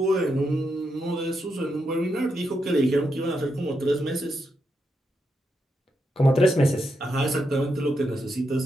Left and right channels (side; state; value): both; normal; correlation 0.83